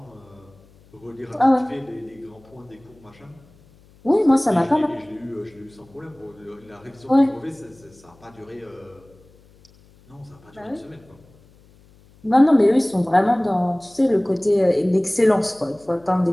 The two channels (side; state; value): left; noise; hum, 28 dB below the sound